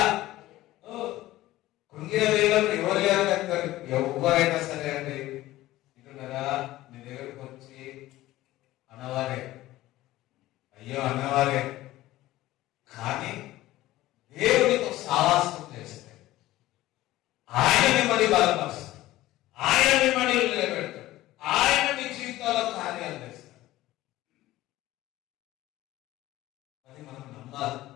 కృంగిన వేళలో ఎవరు లేరు, ఎవరైనా సరే అండి ఇంటున్నారా, నీ దగ్గరకు వచ్చి అన్నవారే, అయ్యో అన్నవారే, కానీ దేవుడితో సావాసం చేస్తే ఆయన మిమ్మల్ని బలపరుస్తాడు, ఆయన మిమ్మల్ని నిలబెడతాడు, ఆయన మీ జీవితంలో కార్యాలు చేస్తాడు. అది మనం నమ్మాలి,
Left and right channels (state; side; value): quieter; right; 16.3 dB